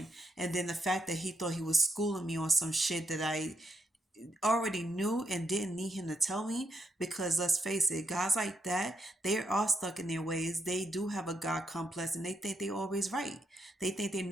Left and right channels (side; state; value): both; normal; correlation 0.79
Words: And then the fact that he thought he was schooling me on some shit that I already knew and didn't need him to tell me, because let's face it, guys like that, they are stuck in their ways. They do have a God complex and they think they're always right. They think they